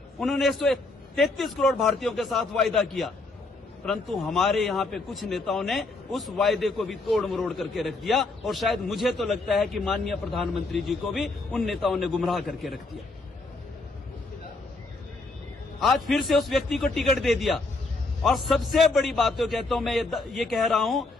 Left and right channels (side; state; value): right; quieter; 3.3 dB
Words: उन्होंने 133 करोड़ भारतीयों के साथ वायदा किया, परंतु हमारे यहाँ पे कुछ नेताओं ने उस वायदे को भी तोड़ मरोड़ करके रख दिया, और शायद मुझे तो लगता है कि माननीय प्रधानमंत्री जी को भी उन नेताओं ने गुमराह करके रख दिया। आज फिर से उस व्यक्ति को टिकट दे दिया, और सबसे बड़ी बात तो कहता हूं, मैं ये कह रहा हूं,